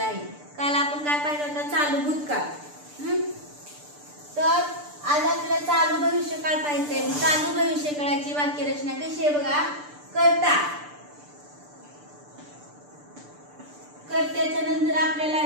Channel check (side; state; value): left; late; 6.8 ms